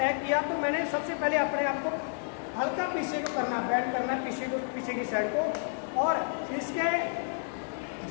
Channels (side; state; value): right; silent; 58 dB below the other